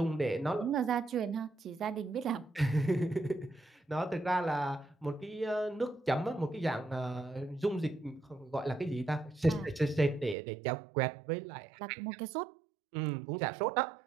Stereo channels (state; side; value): drops out; left; at 10.4 s